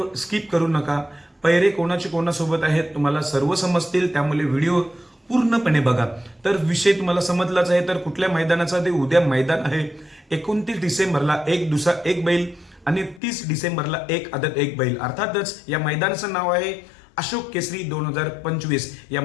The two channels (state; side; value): drops out; right; at 13.2 s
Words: स्किप करू नका. पैरे कोणाचे कोणासोबत आहेत तुम्हाला सर्व समजतील, त्यामुळे व्हिडिओ पूर्णपणे बघा. तर विषय तुम्हाला समजलाच आहे. तर कुठल्या मैदानाचा ते उद्या मैदान आहे 29 डिसेंबरला एक दुसरा एक बैल आणि 30 डिसेंबरला एक आदत एक बैल. अर्थातच या मैदानाचं नाव आहे अशोक केसरी 2025. या